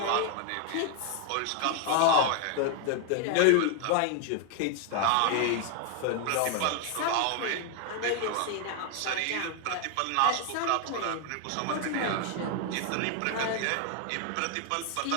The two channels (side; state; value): both; different; correlation 0.01